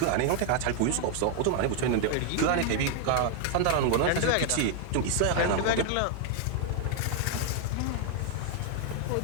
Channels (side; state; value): both; different; correlation 0.00